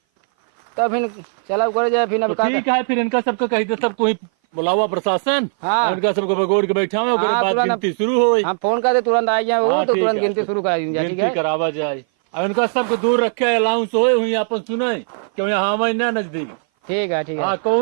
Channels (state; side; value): silent; left; 58 dB below the other